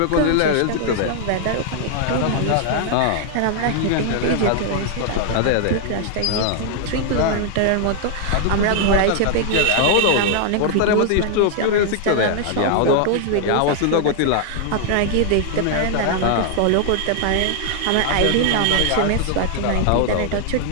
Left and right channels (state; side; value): different; both; correlation 0.00